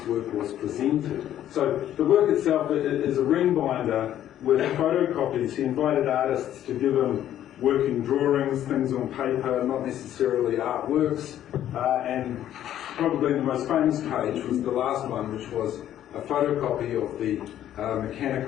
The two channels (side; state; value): right; quieter; 11.6 dB